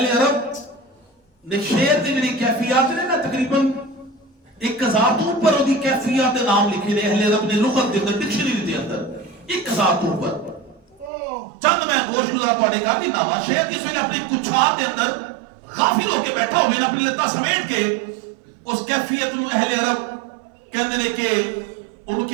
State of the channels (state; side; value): drops out; left; at 11.1 s